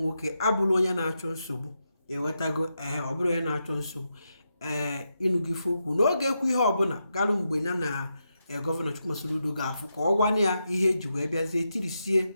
nwoke abụrụ onye na-achọ nsogbu ewetago ọ bụrụ onye na-achọ nsogbu ịnụgo ife okwu n'oge ekwu ihe ọbụla galụ mgbe ya na gọvanọ Chukwuma Soludo ga-afụ ka ọ gwana ya ihe eji wee bịazie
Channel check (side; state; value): both; inverted; correlation -0.85